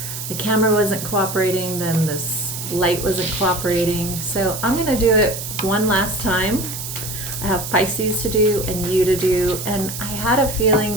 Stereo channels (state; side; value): noise; right; hiss, 7 dB below the sound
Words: the camera wasn't cooperating, then this light wasn't cooperating. So I'm going to do it one last time. I have Pisces to do and you to do, and I had a